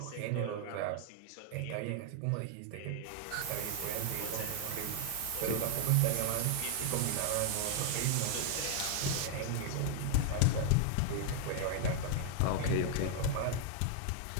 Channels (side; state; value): both; different; correlation 0.00